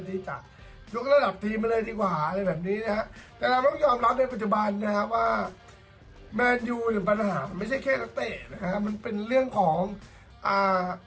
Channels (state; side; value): identical; both; correlation 1.00